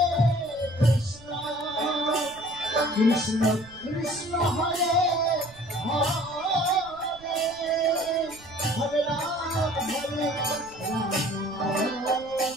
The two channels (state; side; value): noise; right; rumble, 23 dB below the sound